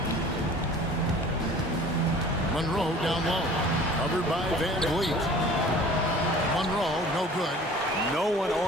Monroe down low. Covered by VanVleet. Monroe, no good. No one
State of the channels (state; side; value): normal; both; correlation 0.46